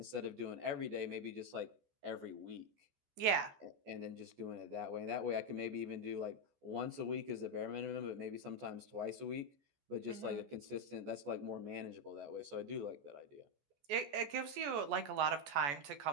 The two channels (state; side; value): late; left; 14 ms